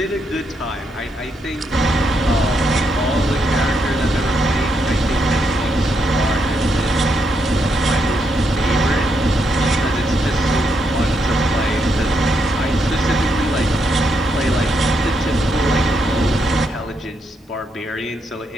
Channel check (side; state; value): both; normal; correlation 0.79